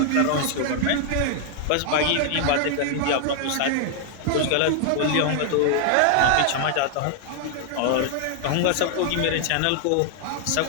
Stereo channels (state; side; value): different; both; correlation 0.00